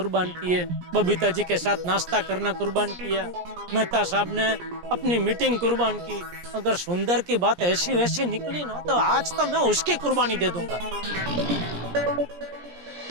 किए, बबीता जी के साथ नाश्ता करना कुर्बान किया, मेहता साहब ने अपनी मीटिंग कुर्बान की। अगर सुंदर की बात ऐसी वैसी निकली ना तो आज तो मैं उसकी कुर्बानी दे दूंगा।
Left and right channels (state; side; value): late; left; 17 ms